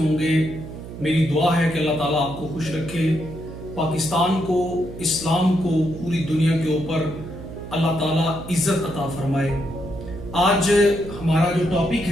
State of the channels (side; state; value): right; noise; hum, 12 dB below the sound